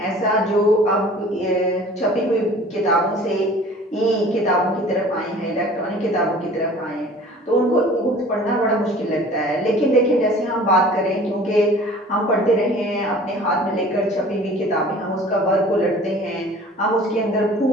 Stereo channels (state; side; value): normal; both; correlation 0.46